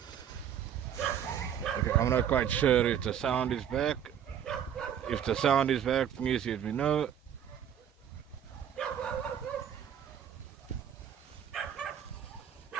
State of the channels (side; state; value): left; quieter; 9.2 dB